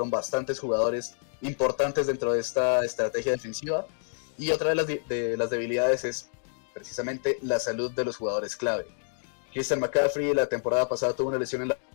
bastantes jugadores importantes dentro de esta estrategia defensiva. Y otra de las debilidades es precisamente la salud de los jugadores clave. Christian McCaffrey la temporada pasada tuvo una lesión en la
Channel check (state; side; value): silent; right; digital silence